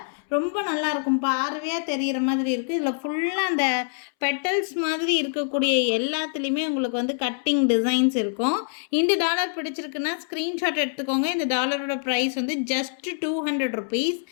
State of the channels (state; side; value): silent; right; 62 dB below the other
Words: ரொம்ப நல்லாயிருக்கும், பார்வையாக தெரிகிற மாதிரி இருக்குது. இதில் ஃபுல்லாக அந்த பெட்டல்ஸ் மாதிரி இருக்கக்கூடிய எல்லாத்துலேயுமே உங்களுக்கு வந்து கட்டிங் டிசைன்ஸ் இருக்கும். இந்த டாலர் பிடிச்சிருக்குன்னா ஸ்க்ரீன்ஷாட் எடுத்துக்கோங்க. இந்த டாலரோட ப்ரைஸ் வந்து ஜஸ்ட் 200 ருபீஸ்.